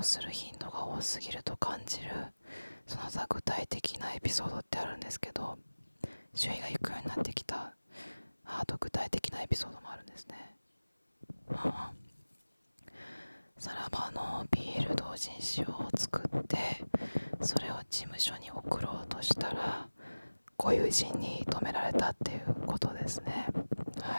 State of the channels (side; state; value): both; inverted; correlation -1.00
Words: する頻度が多すぎると感じる、その他具体的なエピソードってあるんですけど、周囲が引くようになってきた、あと具体的なエピソードもあるんですね。さらばの BL 同人誌を作ってそれを事務所に送ろうとしたらご友人に止められたっていうことですね。